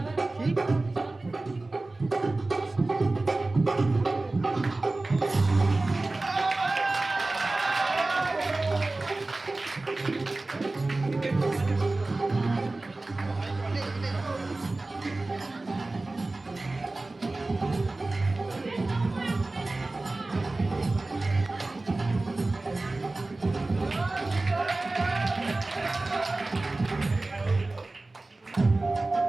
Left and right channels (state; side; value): quieter; left; 3.1 dB